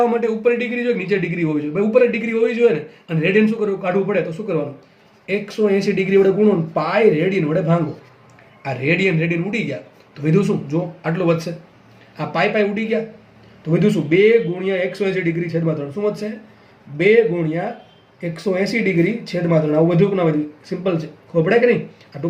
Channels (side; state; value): both; identical; correlation 1.00